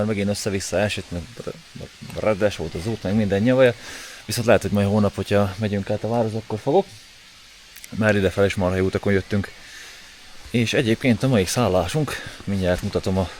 megint össze-vissza esett, meg reddes volt az út, meg minden nyavaja. Viszont lehet, hogy majd hónap, hogyha megyünk át a várhoz, akkor fogok. Már idefel is marha jó utakon jöttünk. És egyébként a mai szállásunk, mindjárt mutatom a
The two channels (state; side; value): identical; both; correlation 1.00